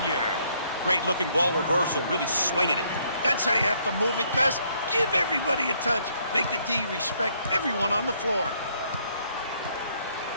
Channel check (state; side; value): inverted; both; correlation -0.68